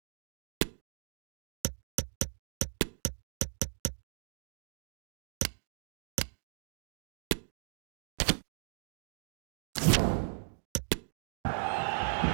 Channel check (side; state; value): left; silent; digital silence